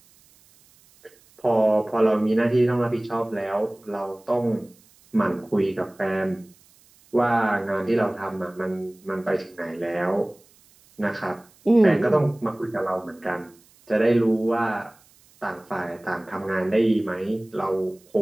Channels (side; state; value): right; noise; hiss, 30 dB below the sound